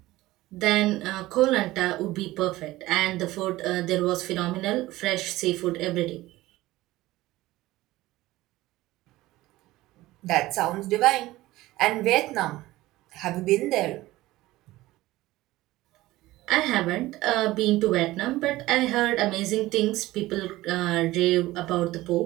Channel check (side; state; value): left; quieter; 17.6 dB